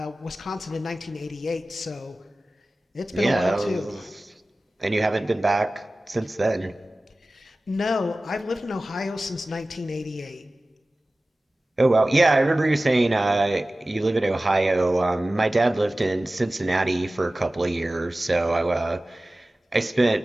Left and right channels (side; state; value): both; normal; correlation 0.97